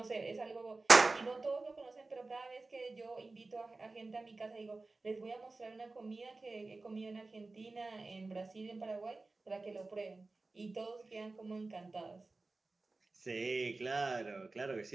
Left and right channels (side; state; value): left; quieter; 3.4 dB